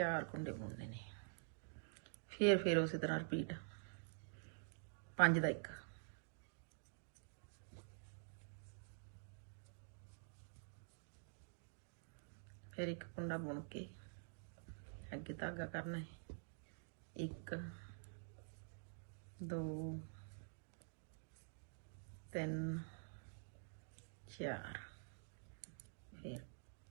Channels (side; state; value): left; silent; digital silence